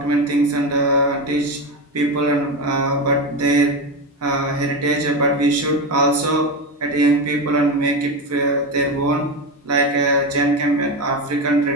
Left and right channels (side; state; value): both; normal; correlation 0.17